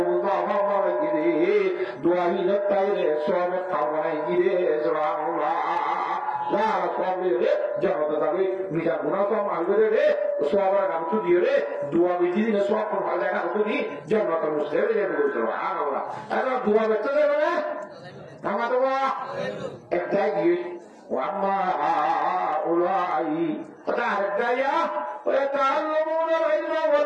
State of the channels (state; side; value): identical; both; correlation 1.00